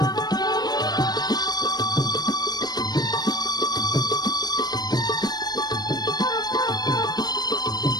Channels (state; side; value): late; right; 0.19 ms